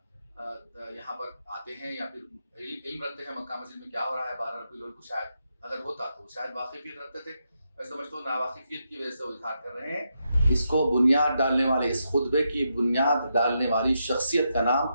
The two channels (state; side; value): inverted; both; correlation -0.83